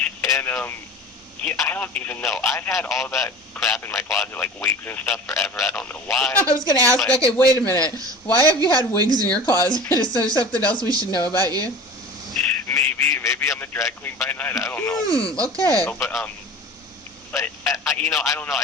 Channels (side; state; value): both; normal; correlation 0.38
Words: And, I don't even know. I've had all that crap in my closet, like wigs and stuff, forever. I don't know why. I was going to ask, okay, wait a minute. Why have you had wigs in your closet? Is there something else we should know about you? Maybe I'm a drag queen by night. I don't know. Okay. No, but I don't know. I